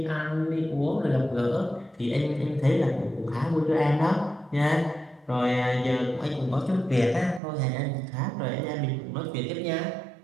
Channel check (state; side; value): drops out; left; at 7.4 s